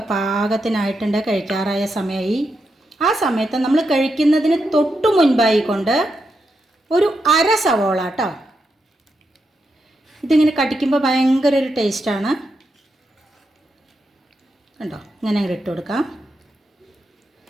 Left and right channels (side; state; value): both; normal; correlation 0.84